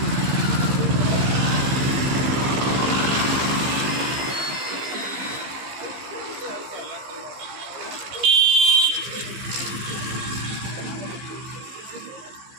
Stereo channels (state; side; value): late; left; 15 ms